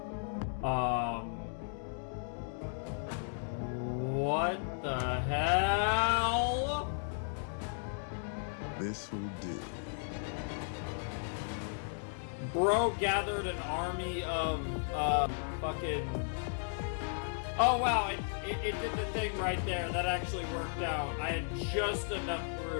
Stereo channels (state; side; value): silent; right; digital silence